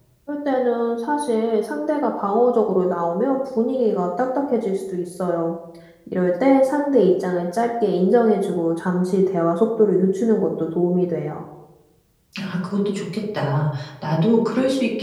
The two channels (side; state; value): both; identical; correlation 1.00